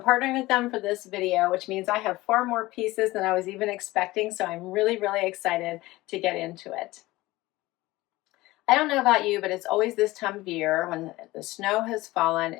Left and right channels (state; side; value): quieter; right; 19.0 dB